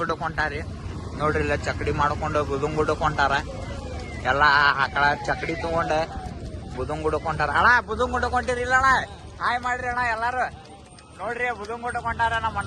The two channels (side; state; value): both; identical; correlation 1.00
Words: ಹೊಂಟಾರಿ ನೋಡ್ರಿ. ಇಲ್ಲ ಚಕಡಿ ಮಾಡ್ಕೊಂಡು ಬುಧನಗುಡ್ಡಕ್ಕೆ ಹೊಂಟಾರ. ಎಲ್ಲ ಆಕಳ ಚಕಡಿ ತಗೊಂಡು ಬುಧನಗುಡ್ಡಕ್ಕೆ ಹೊಂಟಾರ. ಅಣ್ಣ ಬುಧನಗುಡ್ಡಕ್ಕೆ ಹೊಂಟಿರಿಲ್ಲ ಅಣ್ಣ? ಹಾಯ್ ಮಾಡ್ರಿ ಅಣ್ಣ ಎಲ್ಲಾರು. ನೋಡ್ರಿ ಬುಧನಗುಡ್ಡಕ್ಕೆ ಹೊಂಟಾರ ನಮ್ಮ